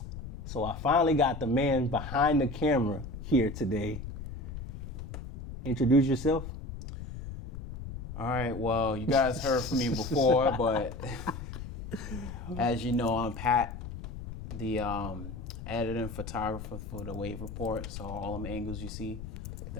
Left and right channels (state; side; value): noise; left; rumble, 9 dB below the sound